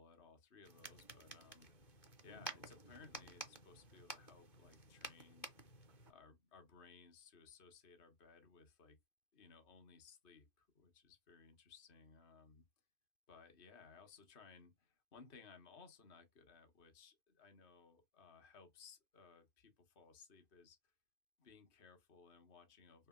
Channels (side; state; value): right; late; 2.5 ms